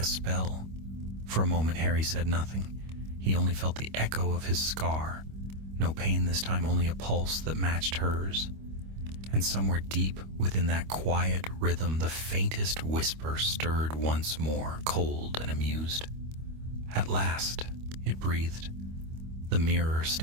spell. For a moment, Harry said nothing. He only felt the echo of his scar. No pain this time, only a pulse that matched hers. And somewhere deep within that quiet rhythm, the faintest whisper stirred once more, cold and amused. "At last," it breathed, "the mirror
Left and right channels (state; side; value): late; left; 25 ms